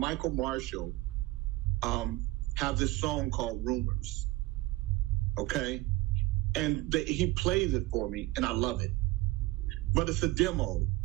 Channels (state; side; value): quieter; left; 19.2 dB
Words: Marshall have this song called Rumors. Okay? And he plays it for me, and I love it. But it's a demo,